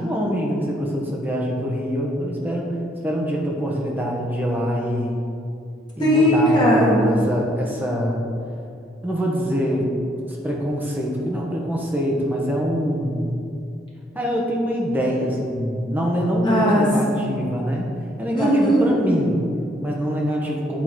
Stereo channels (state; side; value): normal; both; correlation 0.69